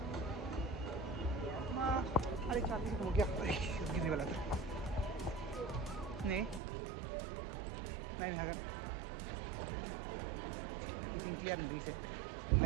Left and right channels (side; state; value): left; drops out; at 6.6 s